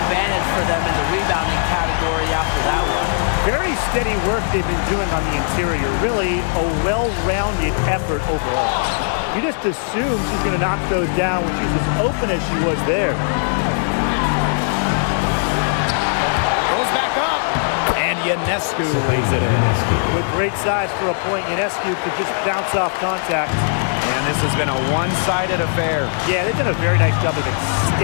for them in the rebounding category after that one. Very steady work they've been doing on the interior. Really a well-rounded effort overall. You just assume she's going to knock those down when she's as open as she was there. Goes back up. And Ionescu lays it in. With great size for a point, Ionescu could just bounce off contact. And this has been a one-sided affair. Yeah, they've done a very nice job of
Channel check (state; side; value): silent; right; digital silence